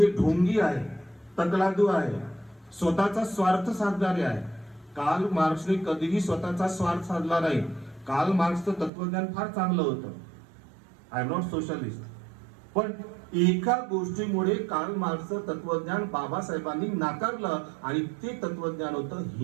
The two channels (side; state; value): left; drops out; at 8.9 s